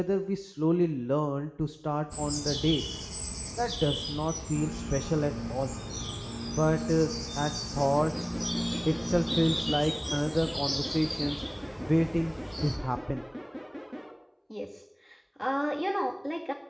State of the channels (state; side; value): identical; both; correlation 1.00